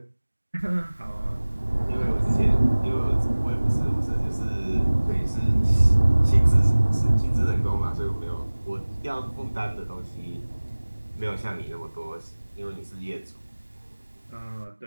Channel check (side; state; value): both; inverted; correlation -1.00